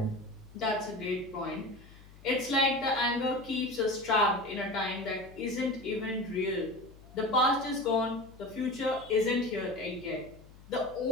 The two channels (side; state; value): left; noise; hum, 21 dB below the sound